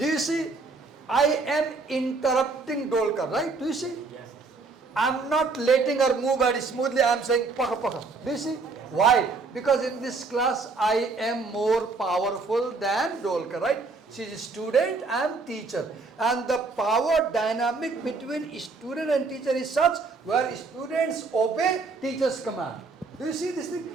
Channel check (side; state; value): left; quieter; 4.1 dB